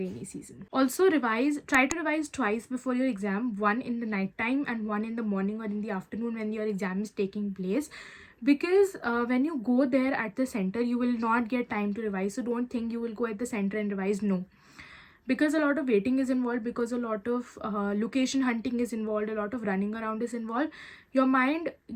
season. Also try to revise twice before your exam, one in the night time and one in the morning or in the afternoon when your exam is taking place, because when you go there at the center, you will not get time to revise. So don't think you will go at the center and revise. No, because a lot of waiting is involved, because a lot of location hunting is involved, a lot of running around is involved, your mind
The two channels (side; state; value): both; identical; correlation 1.00